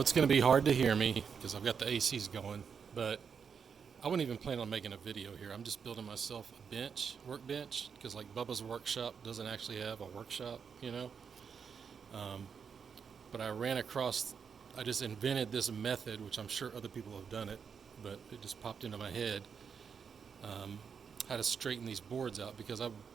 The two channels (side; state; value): left; quieter; 6.5 dB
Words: going to be hard to hear me because I've got the ACs going, but I wouldn't even plan on making a video here. I'm just building myself a workbench, because like Bubba's workshop doesn't actually have a workshop, you know. Um, but I just invented this method, which I'm sure other people have done it, but it just popped into my head, um, how to straighten these boards out, because I